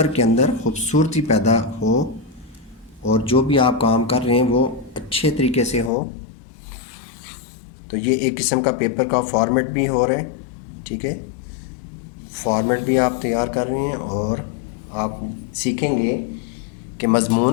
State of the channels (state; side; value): drops out; right; at 5.9 s